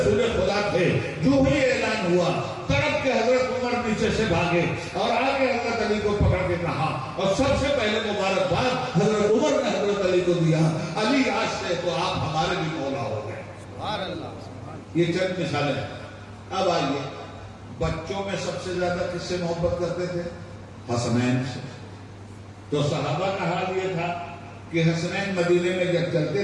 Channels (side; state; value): both; identical; correlation 1.00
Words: خدا تھے، جو ہی اعلان ہوا تڑپ کے حضرت عمر نیچے سے بھاگے اور آگے حضرت علی کو پکڑ کے کہا، اور سب سے پہلے مبارکباد حضرت عمر نے حضرت علی کو دیا، علی آج سے تو آپ ہمارے بھی مولا ہو گئے. یہ چند مثالیں ہیں. اب آئیے بچوں میں سب سے زیادہ کس سے محبت کرتے تھے؟ حسنین سے. تو صحابہ کا حال یہ تھا کہ حسنین مدینے میں جب